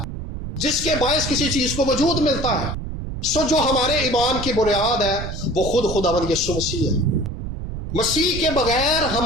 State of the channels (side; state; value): right; noise; rumble, 7 dB below the sound